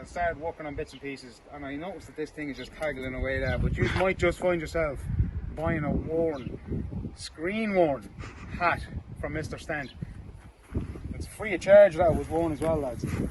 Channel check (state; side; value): identical; both; correlation 1.00